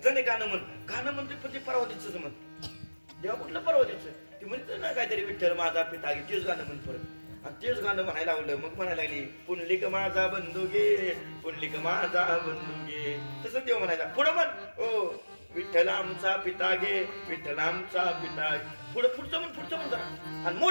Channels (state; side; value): inverted; both; correlation -1.00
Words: जणे गाणं म्हणते पण ते परवातीच म्हण. देवा कुठलं परवातीचं ते म्हणतं ना काहीतरी विठ्ठल माझा पिता गे तेच गाणं म्हण परत. आणि तेच गाणं म्हणायला लावलं. मग म्हणायला लागली पुंडलिक माझा बंधू गे पुंडलिक माझा बंधू गे. तसं देव म्हणायला पुढं म्हण ओ विठ्ठल आमचा पिता गे विठ्ठल आमचा पिता. पुढचं म्हण जरा आणि